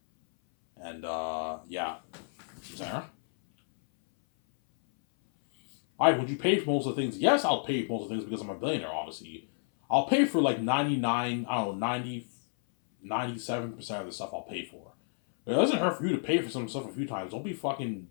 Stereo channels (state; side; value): silent; right; 57 dB below the other